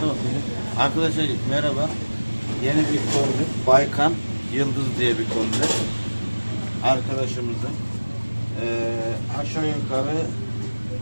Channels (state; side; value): inverted; both; correlation -1.00